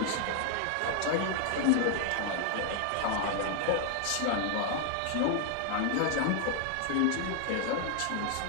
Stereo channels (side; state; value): both; different; correlation 0.00